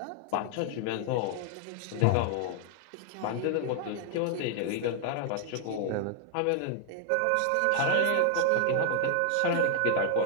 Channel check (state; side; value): different; both; correlation 0.00